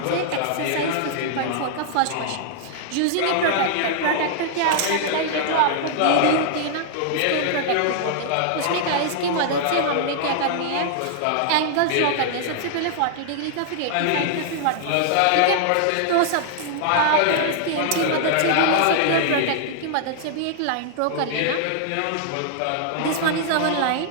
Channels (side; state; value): both; different; correlation -0.01